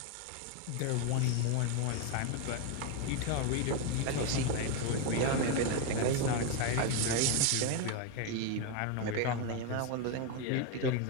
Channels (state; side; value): different; both; correlation 0.02